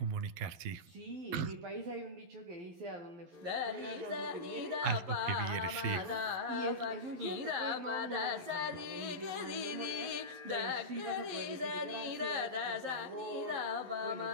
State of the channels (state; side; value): late; left; 12 ms